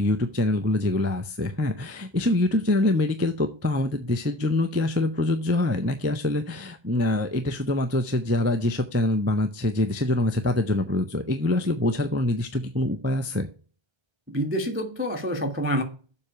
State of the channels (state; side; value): late; left; 1.3 ms